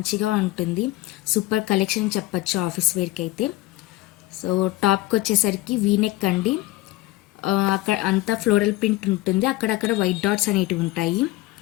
ఉంటుంది. సూపర్ కలెక్షన్ చెప్పచ్చు ఆఫీస్ వేర్కి అయితే. సో టాప్కి వచ్చేసరికి వీనెక్ అండి. అక్కడ అంతా ఫ్లోరల్ ప్రింట్ ఉంటుంది. అక్కడక్కడ వైట్ డాట్స్ అనేటివి ఉంటాయి.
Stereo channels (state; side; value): quieter; right; 17.8 dB